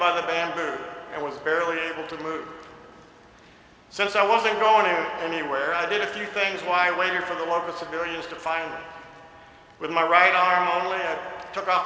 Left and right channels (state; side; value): identical; both; correlation 1.00